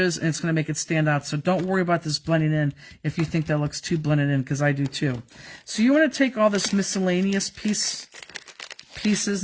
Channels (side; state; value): both; identical; correlation 1.00